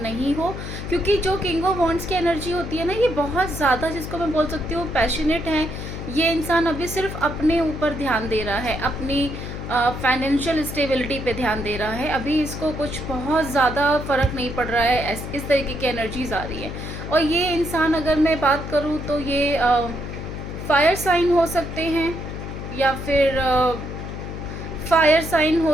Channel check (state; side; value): noise; left; hum, 8 dB below the sound